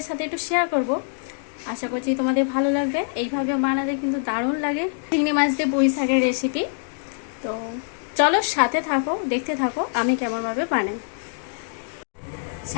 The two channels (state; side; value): silent; right; digital silence